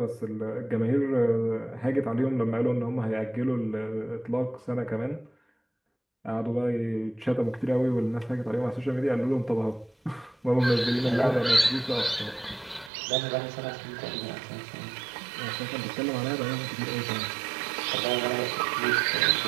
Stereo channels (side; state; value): left; drops out; at 12.9 s